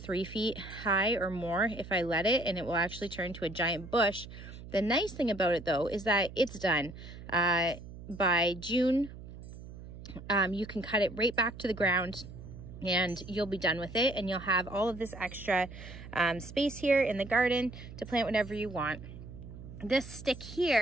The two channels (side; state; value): right; noise; hum, 14 dB below the sound